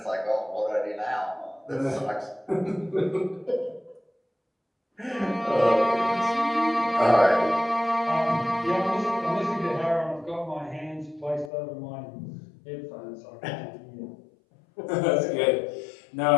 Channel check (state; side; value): drops out; right; at 11.5 s